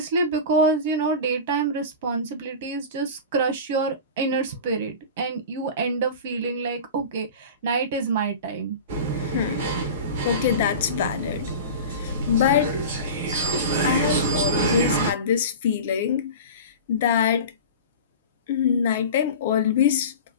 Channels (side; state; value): both; inverted; correlation -0.31